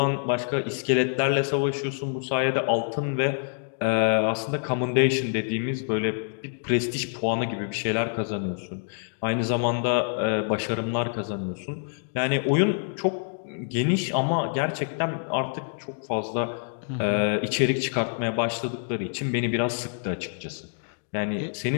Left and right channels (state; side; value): silent; right; digital silence